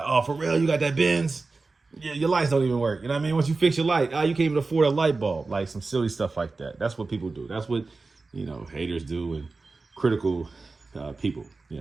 oh, for real, you got that Benz? Yeah, your lights don't even work. You know what I mean? Once you fix your light, you can't even afford a light bulb. Like some silly stuff like that. That's what people do. That's what, haters do, and critical people,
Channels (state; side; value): quieter; left; 3.8 dB